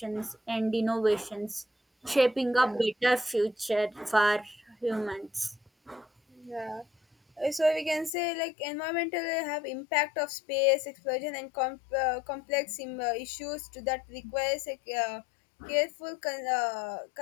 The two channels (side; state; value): right; drops out; at 8.1 s